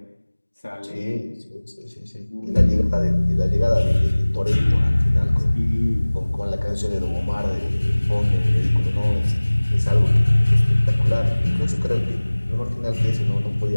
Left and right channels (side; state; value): both; inverted; correlation -1.00